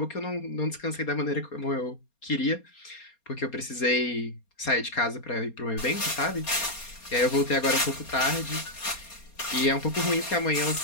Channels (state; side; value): late; right; 4.3 ms